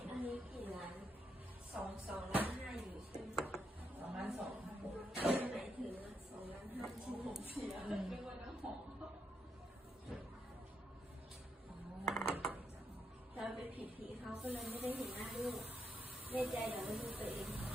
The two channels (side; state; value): both; normal; correlation 0.80